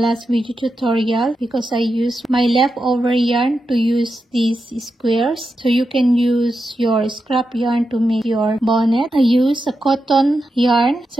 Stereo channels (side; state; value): both; normal; correlation 0.88